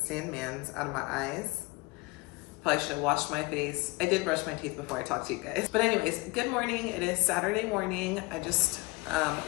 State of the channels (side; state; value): right; quieter; 24.8 dB